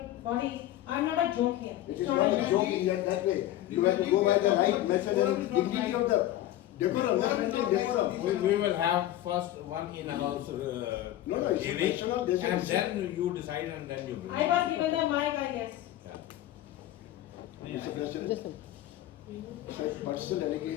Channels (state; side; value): quieter; right; 13.8 dB